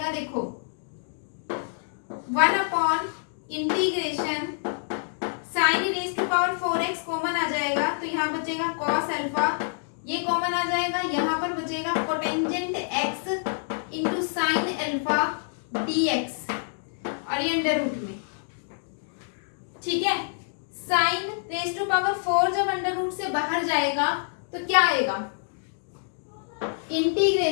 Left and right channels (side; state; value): right; silent; digital silence